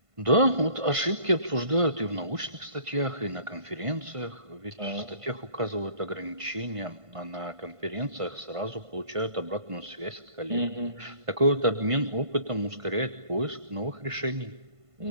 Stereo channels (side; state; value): left; late; 1.5 ms